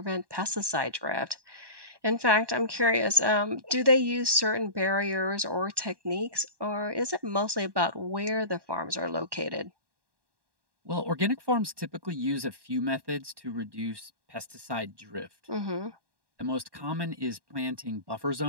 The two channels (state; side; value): late; left; 1.1 ms